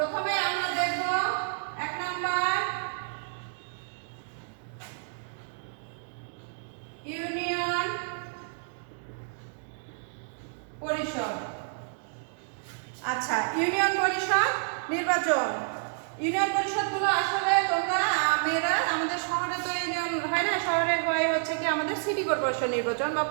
আমরা দেখব 1 নাম্বার ইউনিয়ন পরিষদ। আচ্ছা, ইউনিয়ন পরিষদ নির্বাচন। ইউনিয়ন পরিষদগুলো আসলে তোমরা মেয়েরা, আমাদের শহরে তো ইউনিয়ন হয় না, শহরে হয় হচ্ছে কি আমাদের সিটি কর্পোরেশন নির্বাচন বা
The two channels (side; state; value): left; silent; digital silence